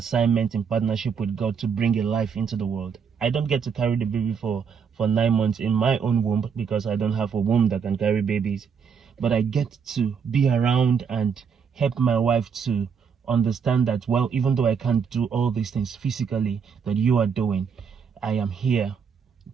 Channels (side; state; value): left; quieter; 6.5 dB